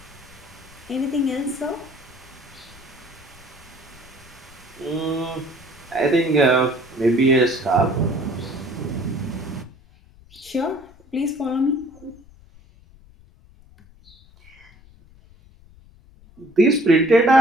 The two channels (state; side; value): noise; left; rumble, 25 dB below the sound